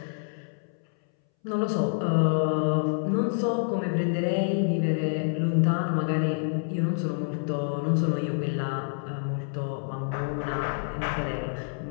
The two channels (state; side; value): silent; right; 60 dB below the other